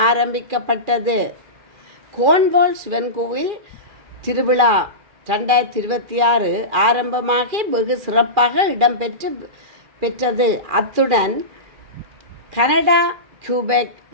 ஆரம்பிக்கப்பட்டது. கோன்வால் சிவன் கோவில் திருவிழா 2026 ஆரம்பமாகி வெகு சிறப்பாக இடம்பெற்றது. அத்துடன் கனடா கியூபெக்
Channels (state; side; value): late; left; 2.4 ms